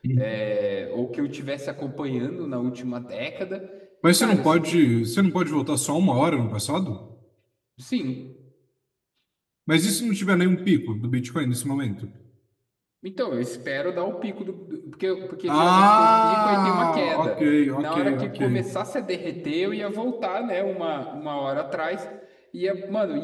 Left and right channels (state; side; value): identical; both; correlation 1.00